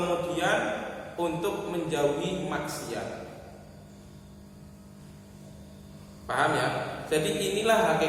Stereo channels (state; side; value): identical; both; correlation 1.00